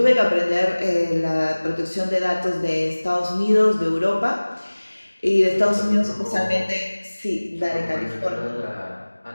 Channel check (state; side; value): inverted; both; correlation -1.00